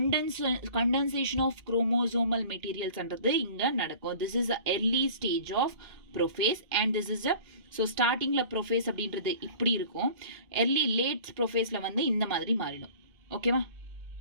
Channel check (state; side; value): late; left; 2.1 ms